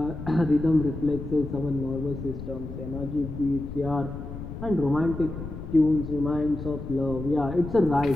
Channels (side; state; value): left; noise; rumble, 9 dB below the sound